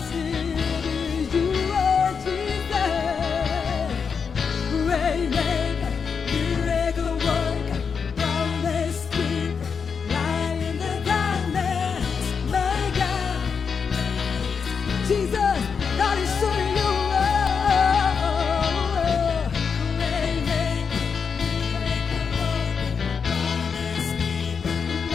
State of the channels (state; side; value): quieter; right; 6.0 dB